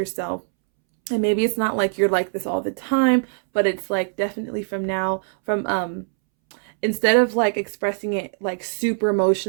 And maybe it's not like you're like this all the time, but it's like definitely from now, instead of like expressing it like super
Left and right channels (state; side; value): silent; left; 64 dB below the other